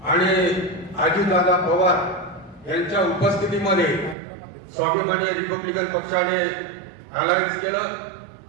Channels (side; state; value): left; drops out; at 4.2 s